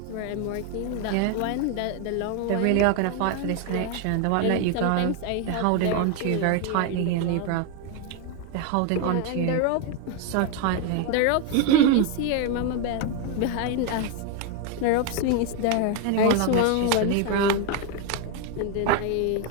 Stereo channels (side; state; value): both; different; correlation 0.01